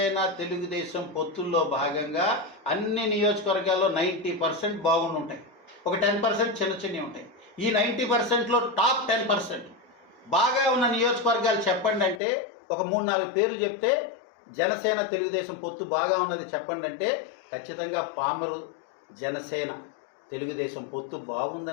తెలుగుదేశం పొత్తుల్లో భాగంగా అన్ని నియోజకవర్గాల్లో 90% బాగుండి ఉంటాయి. ఒక 10% చిన్నవి ఉంటాయి. ఈ 90%లో టాప్ 10% బాగా ఉన్న నియోజకవర్గాలు చెప్పండి అంటే ఒక 3-4 పేర్లు చెప్తే జనసేన తెలుగుదేశం పొత్తు బాగా ఉన్నది చెప్పండి అంటే ఖచ్చితంగా పామరు జనసేన తెలుగుదేశం పొత్తు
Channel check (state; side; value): drops out; right; at 12.2 s